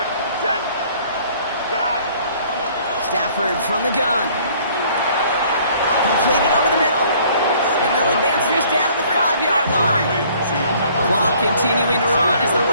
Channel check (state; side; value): inverted; both; correlation -0.57